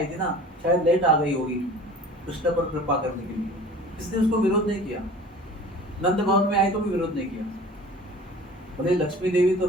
थी ना, शायद लेट आ गई होगी कृष्ण पर कृपा करने के लिए। इसने उसको विरोध नहीं किया। नंद भवन में आई तो भी विरोध नहीं किया। बोले लक्ष्मी देवी तो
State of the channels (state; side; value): normal; both; correlation 0.43